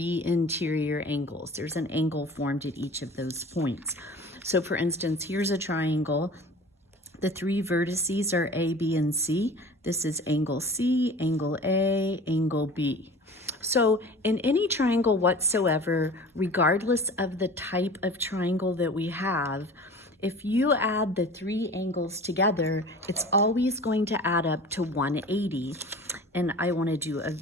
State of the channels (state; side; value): normal; both; correlation 0.41